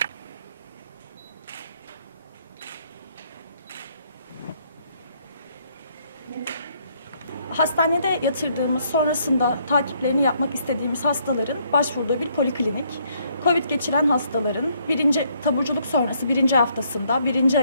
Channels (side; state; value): both; inverted; correlation -0.69